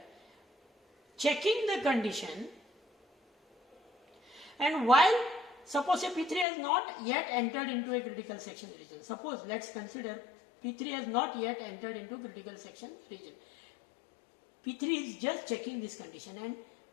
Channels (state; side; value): drops out; right; at 6.5 s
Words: checking the condition, and while suppose say P3 has not yet entered into a critical section region. Suppose, let's consider P3 has not yet entered into critical section region. P3 is just checking this condition, and